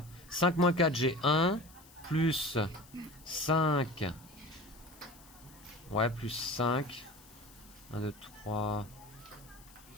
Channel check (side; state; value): left; noise; hiss, 23 dB below the sound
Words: 5 moins 4, j'ai 1. Plus 5. Ouais, plus 5. 1, 2, 3,